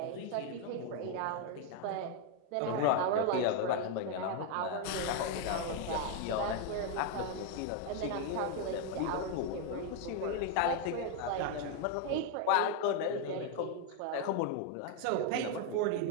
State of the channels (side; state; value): both; different; correlation 0.01